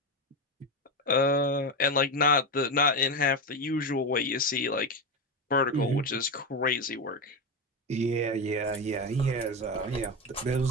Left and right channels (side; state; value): both; normal; correlation 0.14